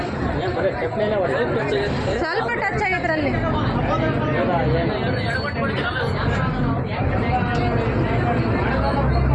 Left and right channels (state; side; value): identical; both; correlation 1.00